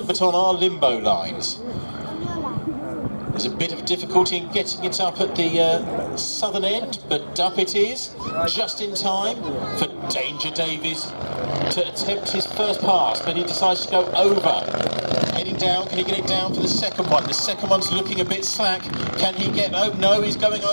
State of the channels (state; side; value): inverted; both; correlation -1.00